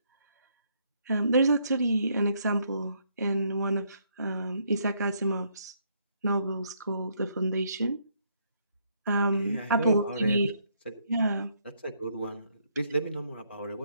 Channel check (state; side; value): inverted; both; correlation -0.72